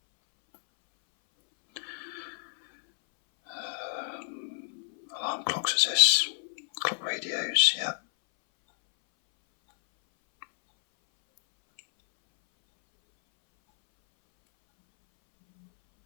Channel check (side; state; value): right; silent; 59 dB below the other